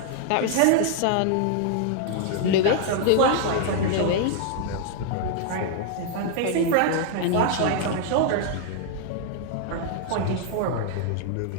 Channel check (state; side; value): different; both; correlation -0.01